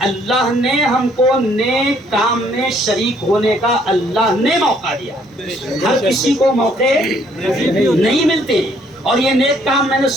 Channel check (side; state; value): both; normal; correlation 0.65